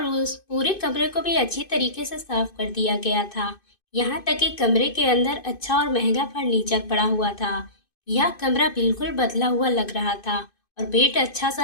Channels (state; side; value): late; right; 2.5 ms